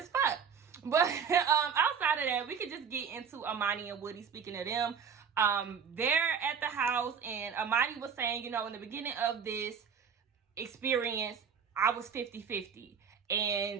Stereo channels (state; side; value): quieter; left; 6.8 dB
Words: fuck. But outside of that, we could just get into Amani and Woody. Speaking of them, they're at the house, and Amani was saying, you know, in the beginning of this experience, I was 50-50.